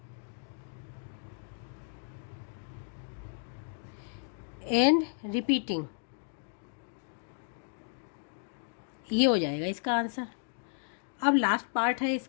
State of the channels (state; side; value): silent; right; digital silence